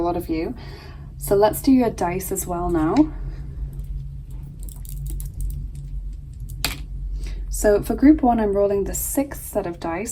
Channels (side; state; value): both; identical; correlation 1.00